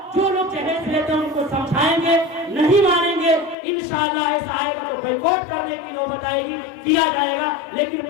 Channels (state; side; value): drops out; right; at 3.6 s